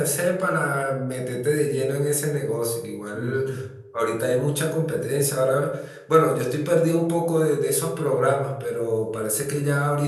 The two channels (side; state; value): both; identical; correlation 1.00